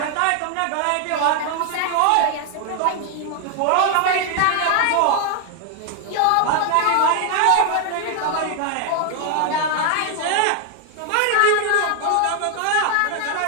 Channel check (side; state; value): both; different; correlation 0.00